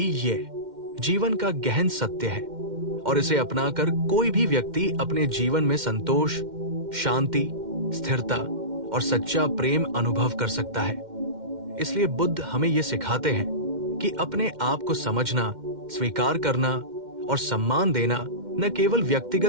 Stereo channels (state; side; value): late; left; 2.1 ms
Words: ये जीवन का गहन सत्य है, और इसे अपनाकर कोई भी व्यक्ति अपने जीवन में संतोष, शांति, स्थिरता और सच्चा प्रेम अनुभव कर सकता है। इसलिए बुद्ध हमें ये सिखाते हैं कि अपने आप को समझना, स्वीकार करना और सम्मान देना न केवल